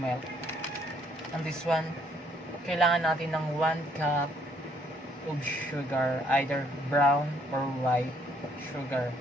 And this one, kailangan natin ng 1 cup of sugar, either brown or white sugar.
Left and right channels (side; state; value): both; normal; correlation 0.67